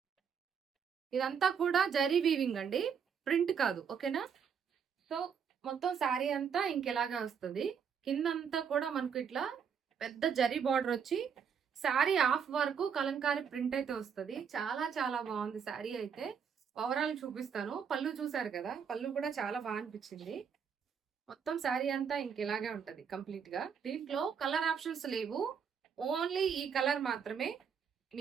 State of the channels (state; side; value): quieter; left; 7.1 dB